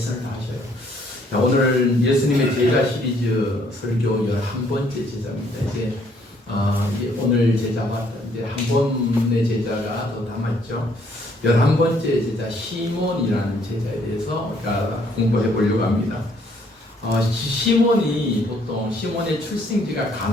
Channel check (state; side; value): normal; both; correlation 0.65